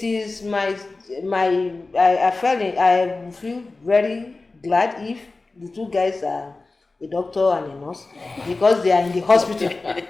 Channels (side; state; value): right; quieter; 3.5 dB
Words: is I feel very glad if the two guys are a doctor and a nurse, because they are in the hospital.